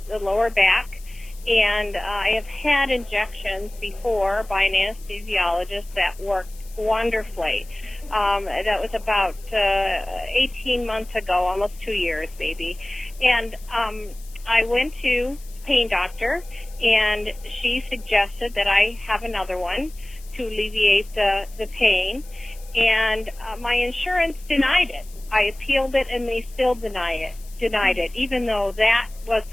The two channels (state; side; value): noise; left; hiss, 22 dB below the sound